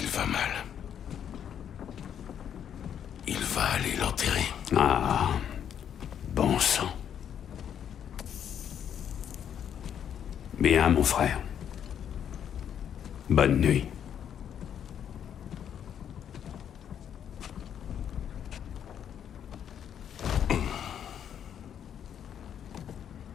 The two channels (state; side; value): quieter; right; 9.0 dB